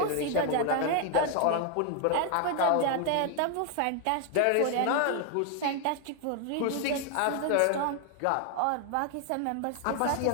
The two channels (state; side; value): different; both; correlation 0.00